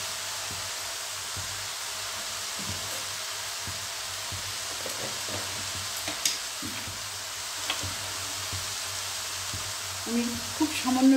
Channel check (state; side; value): identical; both; correlation 1.00